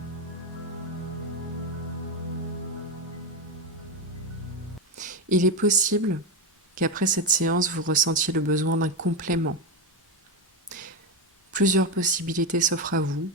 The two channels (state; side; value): normal; both; correlation 0.11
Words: Il est possible qu'après cette séance, vous ressentiez le besoin d'un complément. Plusieurs possibilités s'offrent à vous.